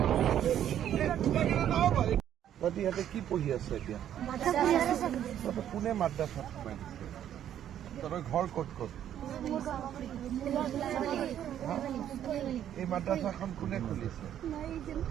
ইহঁতে কি পঢ়ি আছে এতিয়া কোনে মাদ্ৰাছাত সোমাই দিছে তহঁতৰ ঘৰ ক'ত ক'ত এই মাদ্ৰাছাখন কোনে খুলিছে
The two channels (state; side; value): quieter; left; 10.5 dB